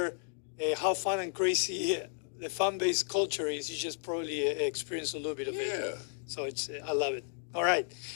how fun and crazy the fan-based culture is, you just probably experience a little bit of Yeah. it. So it's I love it. All right,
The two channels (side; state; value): right; silent; digital silence